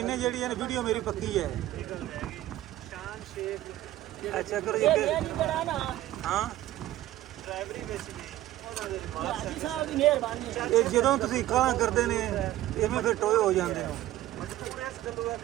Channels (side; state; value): left; quieter; 14.7 dB